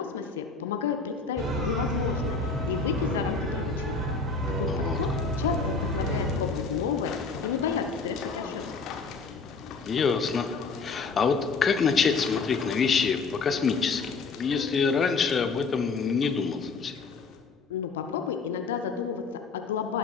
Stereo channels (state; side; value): quieter; right; 4.5 dB